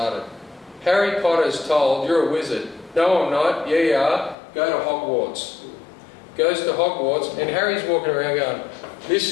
Harry Potter's told, you're a wizard. No, I'm not. Yeah, you are. Go to Hogwarts. Goes to Hogwarts, and Harry's walking around going, this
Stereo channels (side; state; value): right; drops out; at 4.4 s